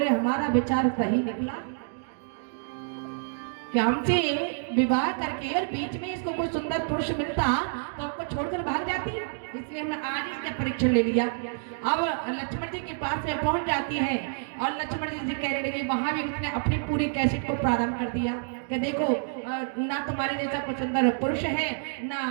हमारा विचार सही निकला कि हमसे विवाह करके और बीच में इसको कोई सुंदर पुरुष मिलता तो हमको छोड़कर भाग जाती, इसलिए हमने आज इसका परीक्षा ले लिया। अब लक्ष्मण जी के पास में पहुंच जाती है और लक्ष्मण जी से कहने लगे, वहां भी उसने अपनी पूरी कैसेट को प्रारंभ कर दिया कि देखो ना तुम्हारे जैसा कोई सुंदर पुरुष है ना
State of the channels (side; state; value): left; silent; digital silence